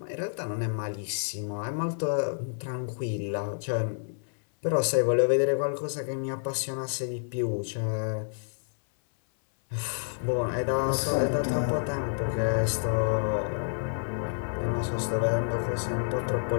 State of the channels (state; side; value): silent; right; 59 dB below the other